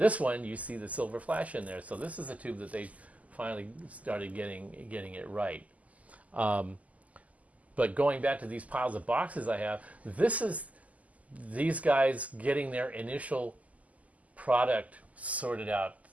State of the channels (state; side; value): late; left; 0.073 ms